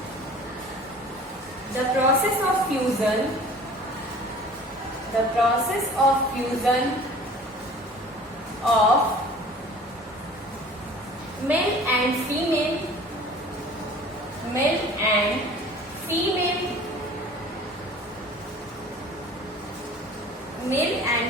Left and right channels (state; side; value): normal; both; correlation 0.46